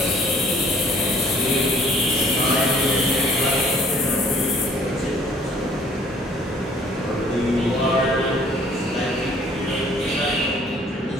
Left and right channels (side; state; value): both; normal; correlation 0.57